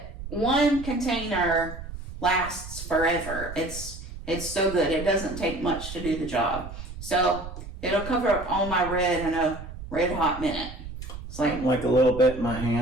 one container lasts forever. It's so good. It doesn't take much to do the job. So it'll cover up all my red in a red hot minute. It's like a little bit in my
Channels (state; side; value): noise; right; rumble, 11 dB below the sound